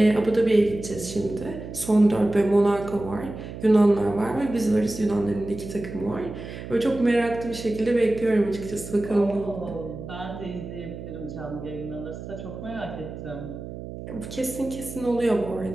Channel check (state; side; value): noise; right; hum, 10 dB below the sound